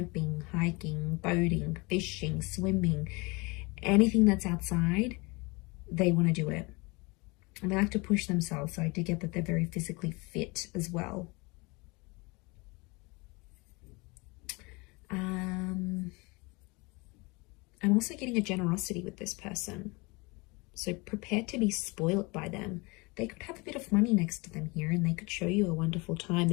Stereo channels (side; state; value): right; quieter; 26.8 dB